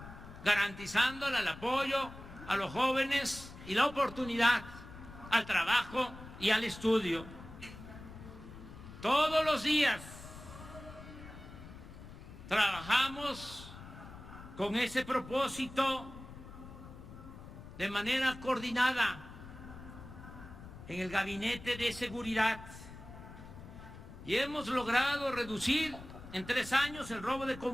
garantizándole el apoyo a los jóvenes y la oportunidad al trabajo y al estudio. Todos los días trabajamos con ese propósito de manera coordinada en el Gabinete de Seguridad y hemos logrado reducir en 3 años el robo de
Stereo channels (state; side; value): noise; left; rumble, 15 dB below the sound